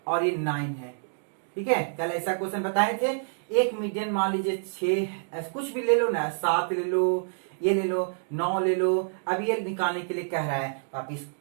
और ये 9 है। ठीक है, कल ऐसा क्वेश्चन बताए थे, एक मीडियन मान लीजिए 6, कुछ भी ले लो ना, 7 ले लो, ये ले लो, 9 ले लो। अब ये निकालने के लिए कह रहा है, आप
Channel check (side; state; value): left; silent; digital silence